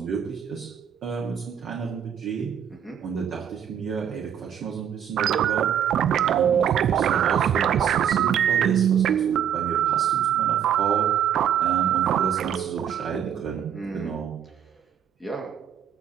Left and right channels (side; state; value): left; quieter; 8.9 dB